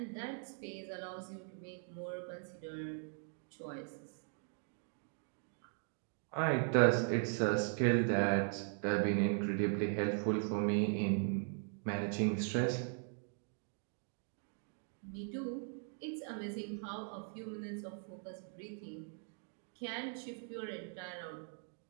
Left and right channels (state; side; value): silent; left; 51 dB below the other